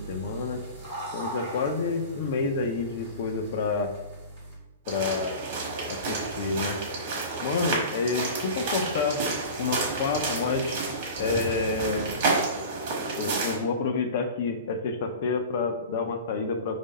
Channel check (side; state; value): both; inverted; correlation -0.34